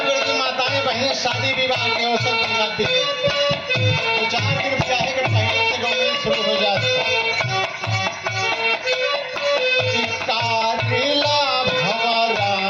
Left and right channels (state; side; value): identical; both; correlation 1.00